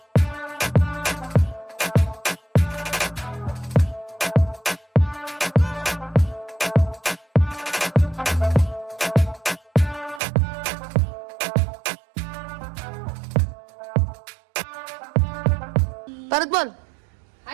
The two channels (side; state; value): left; drops out; at 10.2 s